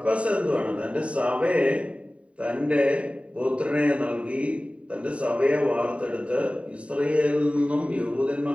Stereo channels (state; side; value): late; left; 0.063 ms